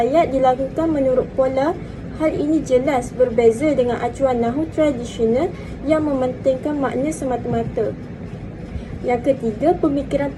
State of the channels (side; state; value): both; identical; correlation 1.00